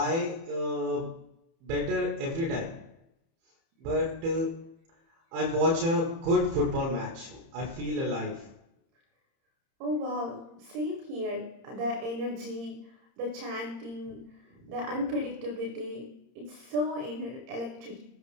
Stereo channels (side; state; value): left; late; 30 ms